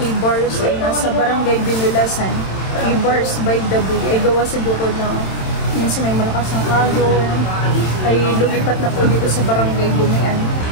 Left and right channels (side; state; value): right; late; 27 ms